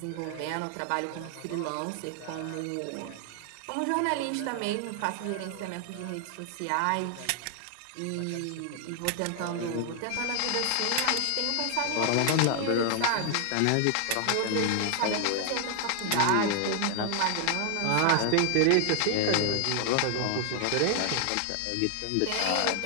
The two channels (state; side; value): different; both; correlation 0.00